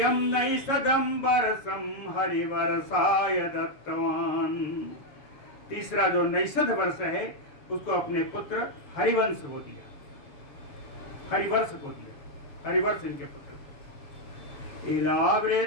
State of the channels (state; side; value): late; right; 7.2 ms